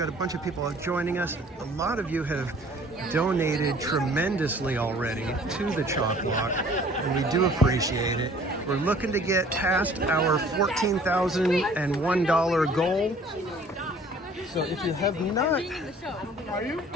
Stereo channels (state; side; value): normal; both; correlation 0.53